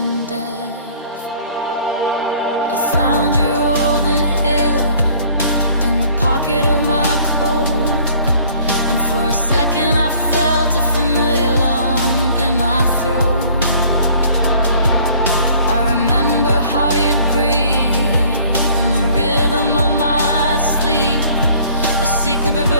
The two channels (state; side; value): inverted; both; correlation -0.55